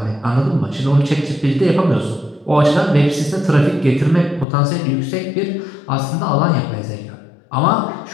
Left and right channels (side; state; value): right; drops out; at 4.5 s